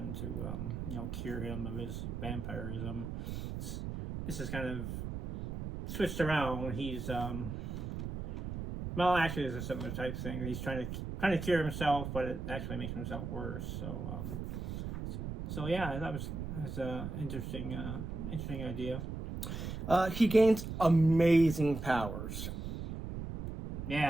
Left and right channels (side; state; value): right; noise; rumble, 5 dB below the sound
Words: to cure him of his vampirism. This is kind of switched around. He's Well, actually, it's a similar type thing. He's trying to cure himself, but it actually makes himself worse. So yeah, that was an interesting idea. He gains amazing powers.